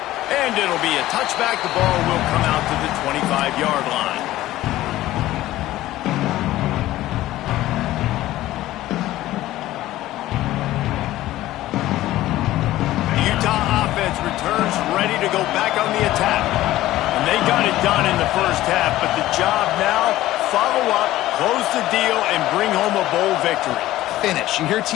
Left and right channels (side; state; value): right; quieter; 15.5 dB